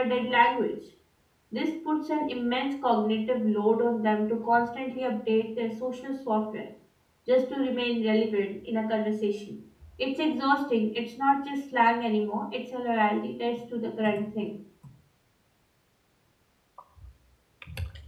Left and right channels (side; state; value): both; identical; correlation 1.00